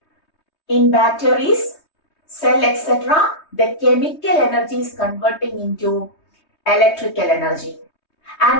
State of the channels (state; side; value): late; right; 3.2 ms